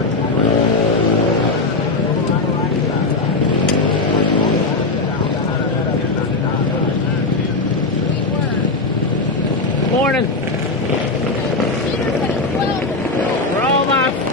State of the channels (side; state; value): right; quieter; 3.4 dB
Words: Morning. For all my